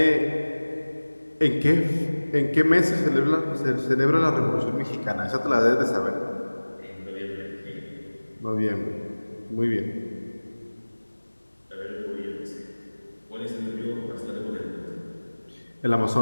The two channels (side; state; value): both; inverted; correlation -1.00